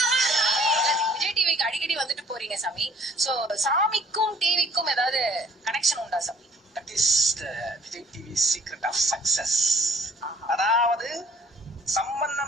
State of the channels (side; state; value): both; normal; correlation 0.56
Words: விஜய் டிவிக்கு அடிக்கடி வந்துட்டு போறீங்க சாமி. சோ சாமிக்கும் டிவிக்கும் ஏதாவது கனெக்ஷன் உண்டா சாமி? That is the Vijay TV secret of success. அதாவது